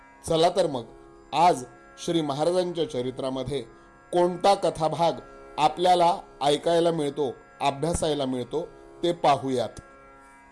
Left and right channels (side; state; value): both; identical; correlation 1.00